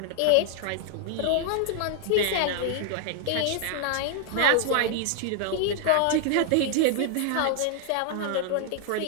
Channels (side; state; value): both; different; correlation 0.00